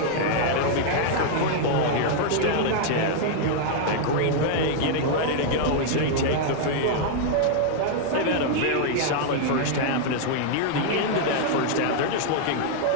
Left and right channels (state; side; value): different; both; correlation 0.00